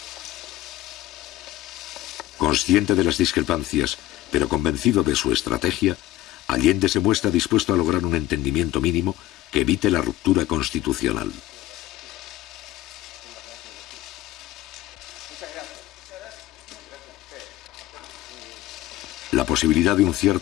Consciente de las discrepancias, pero convencido de su estrategia, Allende se muestra dispuesto a lograr un entendimiento mínimo que evite la ruptura constitucional. La posibilidad de un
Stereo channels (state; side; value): quieter; right; 15.3 dB